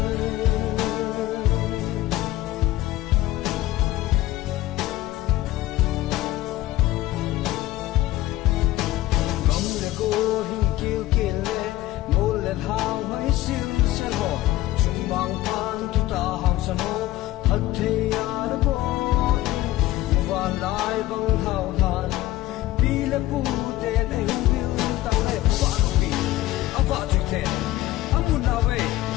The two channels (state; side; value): quieter; right; 15.7 dB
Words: hang hai sil se ho chung mang pan tu ta hang san ho hat the ya bo wa lai bang hao han pi le pu te ne hu ta le pa no pi a pa tu te a mu na we